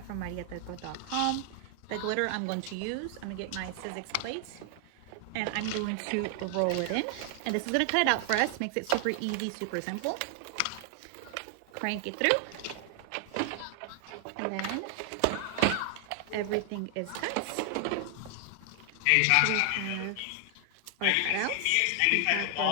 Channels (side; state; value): both; different; correlation 0.00